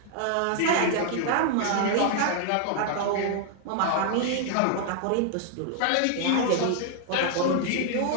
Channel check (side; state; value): both; different; correlation 0.00